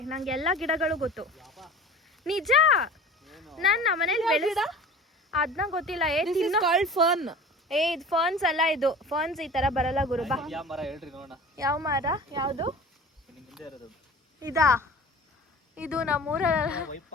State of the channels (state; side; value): normal; both; correlation 0.40